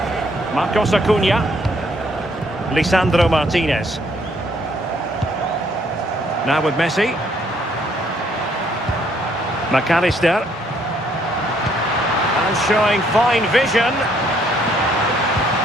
Marcos Acuna. Lisandro Martinez. Now with Messi. McAllister. And showing fine vision.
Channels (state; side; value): normal; both; correlation 0.67